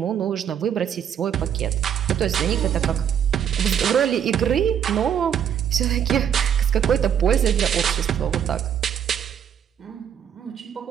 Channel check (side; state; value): left; quieter; 8.9 dB